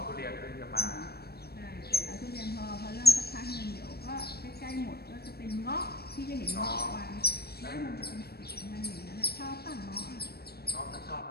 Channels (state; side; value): late; right; 0.46 ms